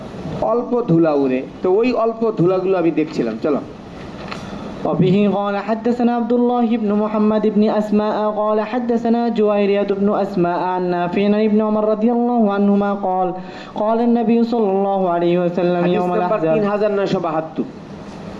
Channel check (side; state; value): both; identical; correlation 1.00